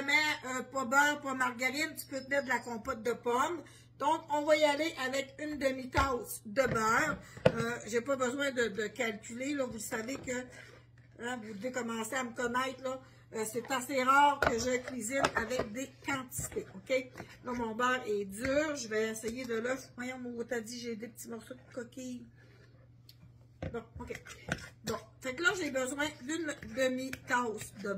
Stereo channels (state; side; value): identical; both; correlation 1.00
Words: pas beurre, pas margarine, tu peux te mettre de la compote de pommes. Donc, on va y aller avec une demi-tasse de beurre. J'ai pas besoin de calculer, là. Vous savez que, hein, vous devez commencer à me connaître, là. C'est assez rare que je cuisine avec des quantités, ok? Là, mon beurre est dur. Je vais essayer de l'œuf. Voyons, mon t'as dit, j'ai des petits morceaux de coquille. Bon, ok. Bon, fait que là, j'ai besoin d'une demi-tasse de